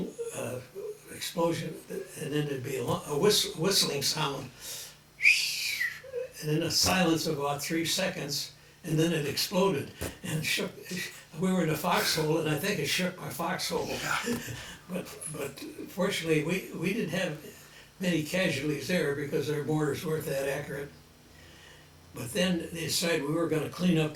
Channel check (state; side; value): identical; both; correlation 1.00